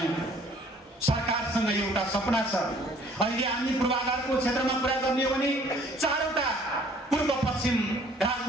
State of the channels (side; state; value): both; normal; correlation 0.57